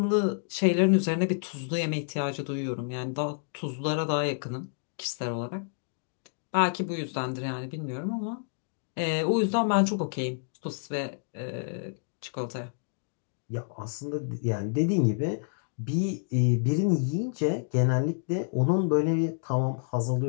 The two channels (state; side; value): silent; right; digital silence